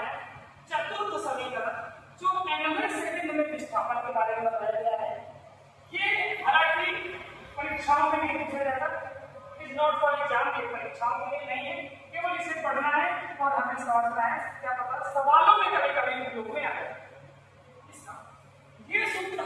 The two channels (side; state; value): both; identical; correlation 1.00